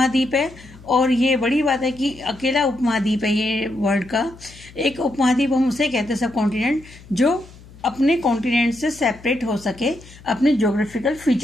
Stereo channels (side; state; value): left; noise; hum, 21 dB below the sound